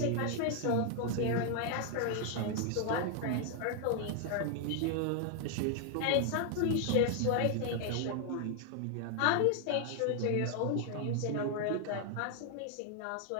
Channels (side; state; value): both; different; correlation 0.00